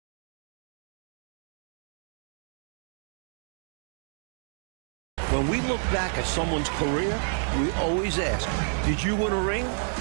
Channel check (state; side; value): silent; left; 58 dB below the other